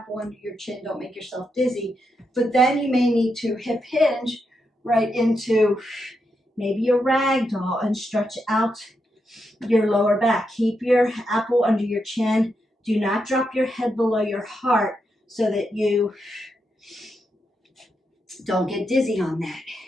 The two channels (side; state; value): both; normal; correlation 0.83